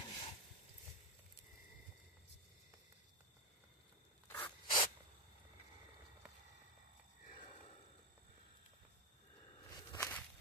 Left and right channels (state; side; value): normal; both; correlation 0.05